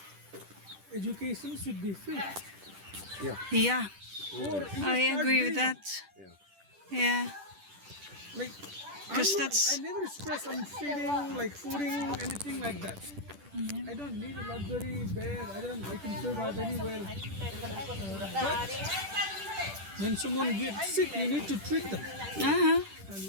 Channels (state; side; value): late; left; 10 ms